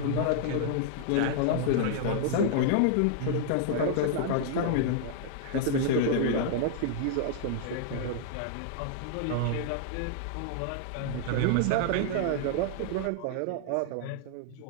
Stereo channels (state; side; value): different; both; correlation -0.01